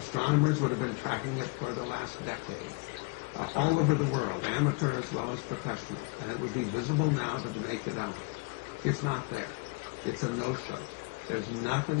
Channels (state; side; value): quieter; right; 29.3 dB